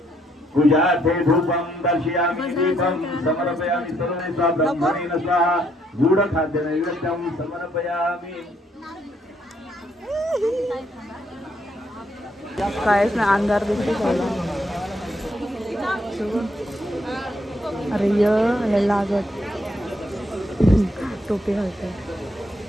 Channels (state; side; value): normal; both; correlation 0.72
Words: पूजार्थे धूपं दर्शयामि दीपं समर्पयामि सर्वे सा ब्रह्मणेन स्वाहा गूढखाद्य नैवेद्यं समर्पयामि कायच ना अंधार दिसते सगळा अरे य लागत टोपी घालते